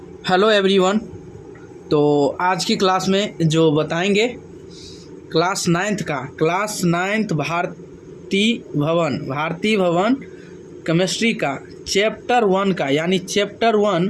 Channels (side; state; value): both; identical; correlation 1.00